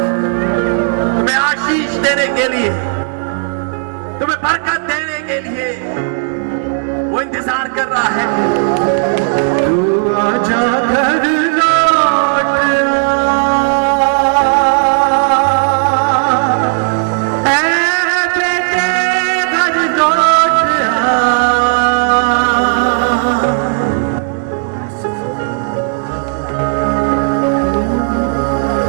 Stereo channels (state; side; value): silent; left; 65 dB below the other